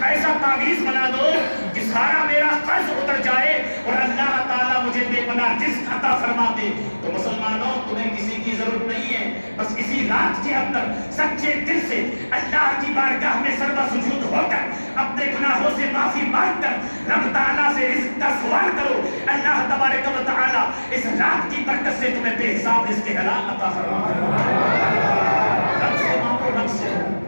ایسا تعویذ بنا دو کہ سارا میرا قرض اتر جائے اور اللہ تعالیٰ مجھے بے پناہ رزق عطا فرما دے۔ تو مسلمانوں تمہیں کسی کی ضرورت نہیں ہے، بس اسی رات کے اندر سچے دل سے اللہ کی بارگاہ میں سربا سجود ہو کر اپنے گناہوں سے معافی مانگ کر رب تعالیٰ سے رزق کا سوال کرو، اللہ تبارک و تعالیٰ اس رات کی برکت سے تمہیں بے حساب رزق حلال عطا فرما دے۔ رب سے مانگو، رب سے،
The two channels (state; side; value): inverted; both; correlation -1.00